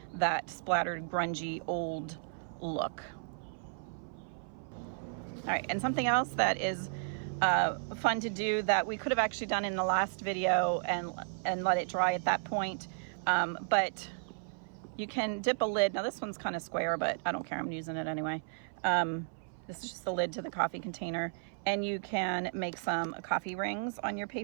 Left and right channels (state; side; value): silent; left; 55 dB below the other